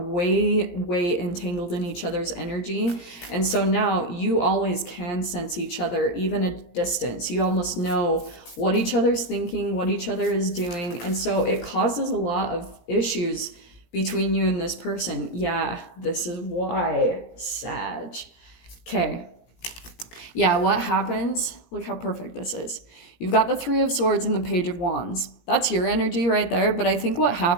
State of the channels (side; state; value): right; late; 17 ms